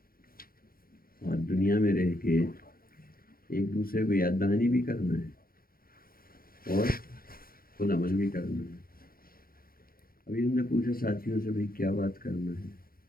اور دنیا میں رہ کے ایک دوسرے کو یاد دہانی بھی کرنا ہے اور خود عمل بھی کرنا ہے۔ ابھی ہم نے پوچھا ساتھیوں سے بھائی کیا بات کرنا ہے،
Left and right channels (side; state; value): right; late; 0.42 ms